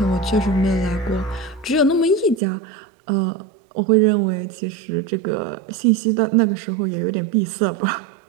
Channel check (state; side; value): drops out; left; at 2.4 s